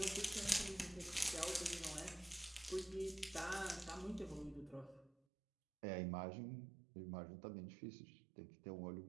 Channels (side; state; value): left; drops out; at 5.2 s